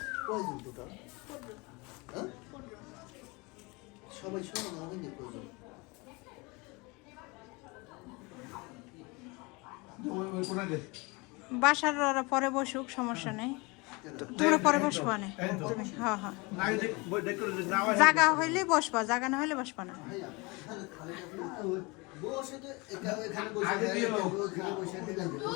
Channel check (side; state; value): right; quieter; 26.6 dB